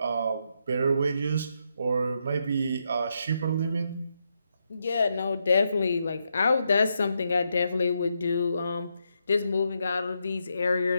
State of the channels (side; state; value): both; inverted; correlation -0.81